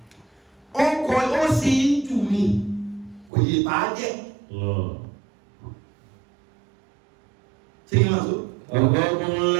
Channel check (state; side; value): drops out; left; at 3.3 s